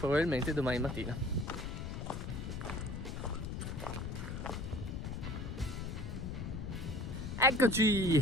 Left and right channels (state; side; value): noise; left; rumble, 5 dB below the sound